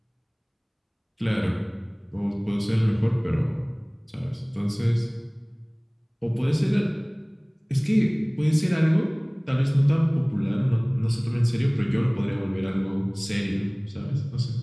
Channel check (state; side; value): identical; both; correlation 1.00